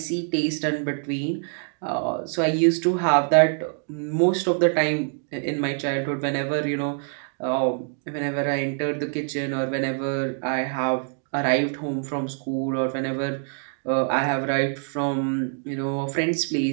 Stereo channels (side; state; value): left; silent; 58 dB below the other